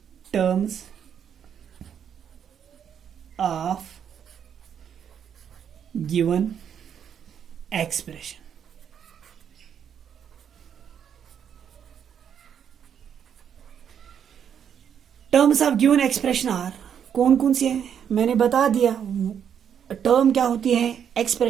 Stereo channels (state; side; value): quieter; left; 8.3 dB